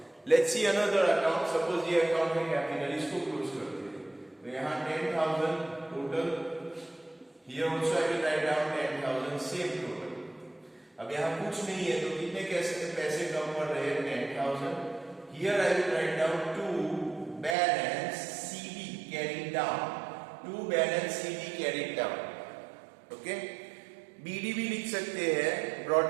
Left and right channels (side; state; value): left; drops out; at 17.6 s